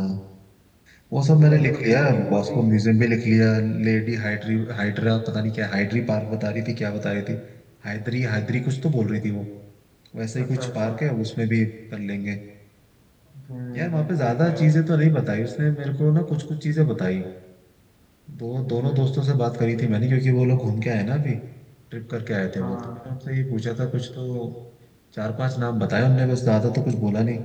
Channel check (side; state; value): both; identical; correlation 1.00